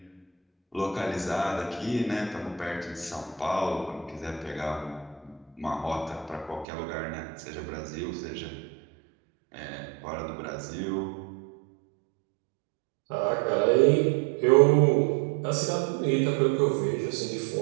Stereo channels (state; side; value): drops out; left; at 6.7 s